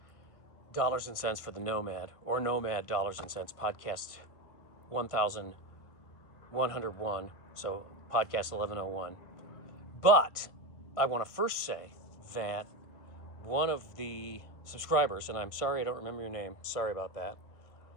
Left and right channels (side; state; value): right; late; 1.6 ms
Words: Dollars and Cents for the Nomad, or Nomad Dollars and Cents, podcast 1101, so podcast 1101. But I want to first say that one of the subscribers, and I'm sorry I don't remember your name, sorry about that,